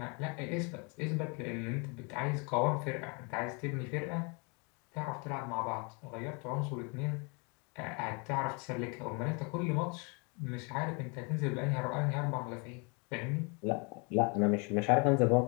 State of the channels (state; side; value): quieter; right; 32.9 dB